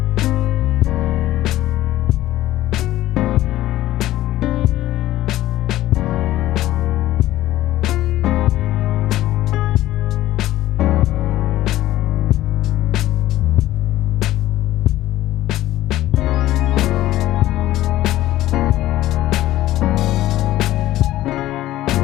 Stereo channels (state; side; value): quieter; right; 14.9 dB